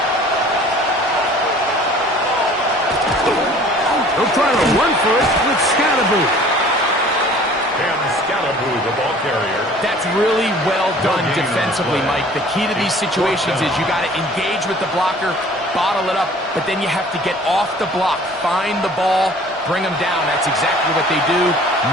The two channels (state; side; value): normal; both; correlation 0.50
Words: They'll try to run for it with Scatterboo. The ball carrier. That's really well done defensively, Mike. The key to these situations is you got to engage with the blocker, bottle it up, but then you have to get off the block, find the ball, bring them down. That's exactly what they do.